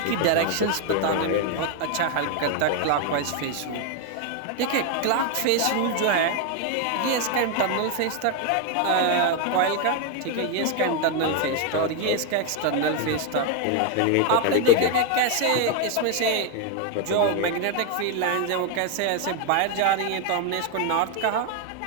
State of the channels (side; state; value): both; different; correlation 0.01